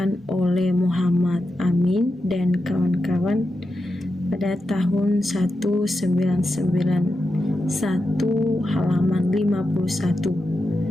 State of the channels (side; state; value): both; normal; correlation 0.89